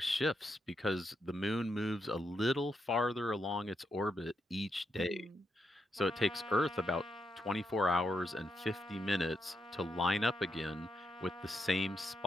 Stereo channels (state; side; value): normal; both; correlation 0.82